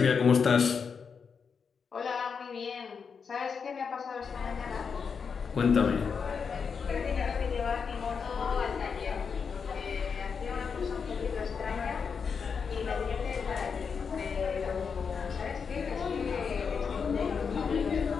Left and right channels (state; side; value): quieter; right; 6.0 dB